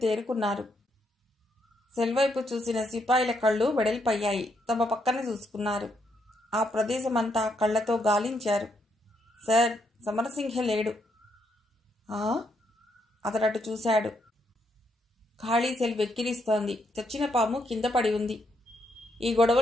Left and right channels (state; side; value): normal; both; correlation 0.76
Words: తేరుకున్నారు. సెల్వైపు చూసిన సిపాయిల కళ్ళు వెడల్పయ్యాయి. తమ పక్కన చూసుకున్నారు. ఆ ప్రదేశమంతా కళ్లతో గాలించారు. సార్, సమరసింహ లేడు. అతడటు చూశాడు. ఖాళీ సెల్ వెక్కిరిస్తోంది. చచ్చిన పాము కింద పడి ఉంది. ఈ